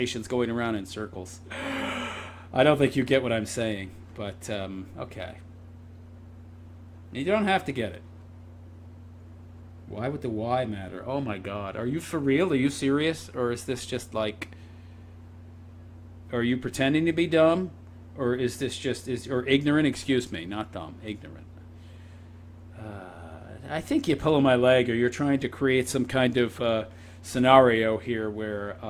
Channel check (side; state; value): both; identical; correlation 1.00